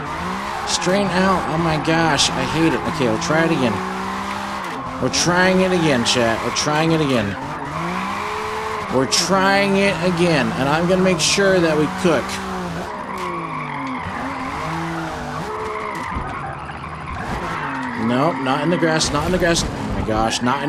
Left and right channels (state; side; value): identical; both; correlation 1.00